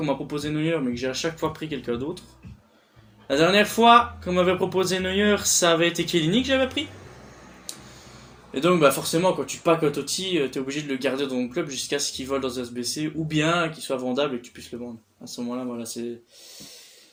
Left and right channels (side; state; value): both; identical; correlation 1.00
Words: m'a proposé Neuer, mais que j'ai à chaque fois pris quelqu'un d'autre. La dernière fois qu'on m'avait proposé Neuer, ça avait été Chiellini que j'avais pris. Et donc bah forcément quand tu packs un Totti, t'es obligé de le garder dans ton club jusqu'à ce qu'il vole dans un SBC, ou bien qu'il soit vendable et que tu puisses le vendre. À ce moment-là, voilà,